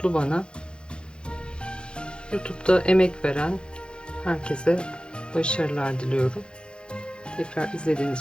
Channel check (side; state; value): right; late; 0.052 ms